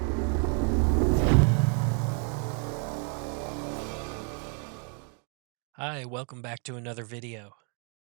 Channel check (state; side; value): quieter; left; 37.7 dB